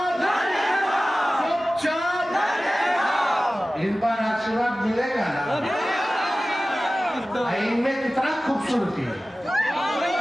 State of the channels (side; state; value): both; normal; correlation 0.96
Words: इन पर आशीर्वाद मिलेगा ना। इनमें कितना खूबसूरती है,